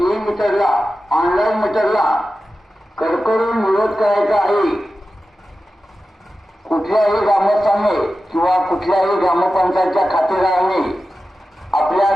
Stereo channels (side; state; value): both; normal; correlation 0.93